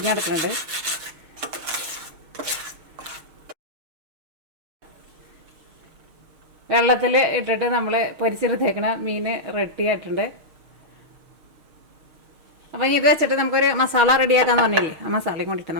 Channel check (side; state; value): left; late; 6.5 ms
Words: വെള്ളത്തിൽ ഇട്ടിട്ട് നമ്മൾ പൊരിച്ചെടുത്തേക്കണ മീൻ റെഡി ആയിട്ടുണ്ട്. അപ്പം ഇത് വെച്ചിട്ട് നമുക്കൊരു മസാല റെഡിയാക്കാന്ന് പറഞ്ഞില്ലേ, ആ മസാലയും കൊണ്ടിട്ട്